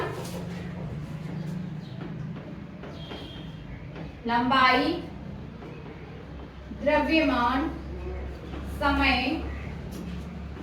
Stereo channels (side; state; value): both; identical; correlation 1.00